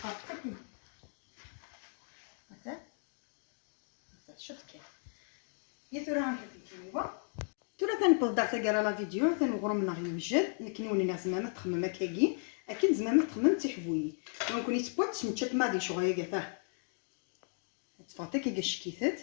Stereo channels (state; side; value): silent; right; 54 dB below the other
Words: مثلا شوف كيف يثورها نحطي كيوا تولا ثاني بضع تقرا لا فيديو ثاني غرم نغ يوجد لكن وني ناس ما تخمم هكاكي اكيد زعما تخمم تحبوي دونك ني تبوت نتشات ما دي شغل كاع تفاطيك كي